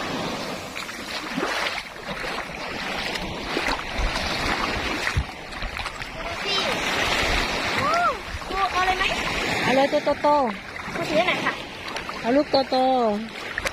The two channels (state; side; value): identical; both; correlation 1.00